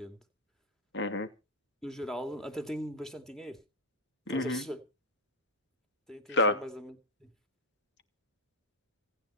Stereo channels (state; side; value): normal; both; correlation 0.00